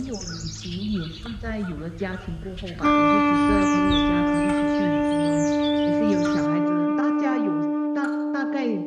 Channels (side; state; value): both; identical; correlation 1.00